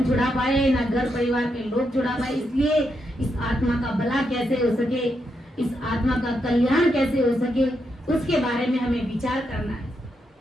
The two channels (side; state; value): both; normal; correlation 0.82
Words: छुड़ा पाए ना घर परिवार के लोग छुड़ा पाए। इसलिए इस आत्मा का भला कैसे हो सके, इस आत्मा का कल्याण कैसे हो सके, उसके बारे में हमें विचार करना है।